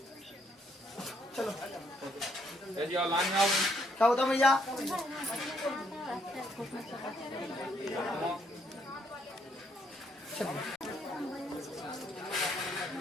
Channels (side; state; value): both; normal; correlation 0.71